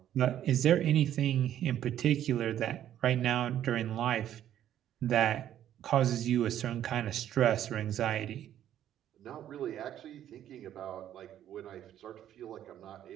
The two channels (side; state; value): left; quieter; 11.2 dB